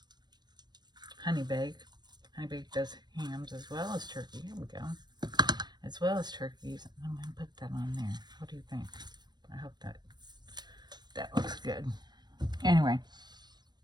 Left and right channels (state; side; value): late; left; 0.21 ms